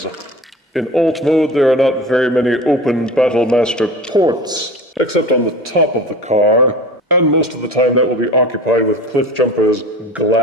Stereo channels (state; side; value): normal; both; correlation 0.36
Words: In alt mode, there are not very many open Battlemaster ports, except on the top of the car, and most of the time that will be occupied with Cliffjumper's